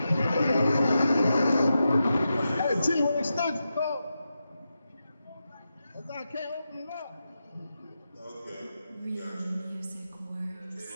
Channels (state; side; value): inverted; both; correlation -0.89